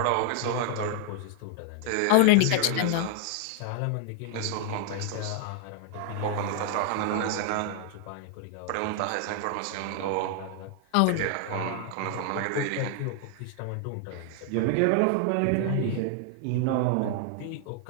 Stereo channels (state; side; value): different; both; correlation 0.00